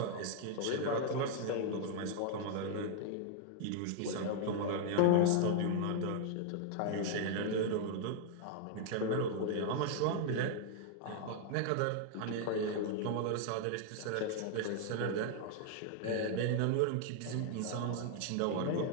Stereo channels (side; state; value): both; different; correlation -0.01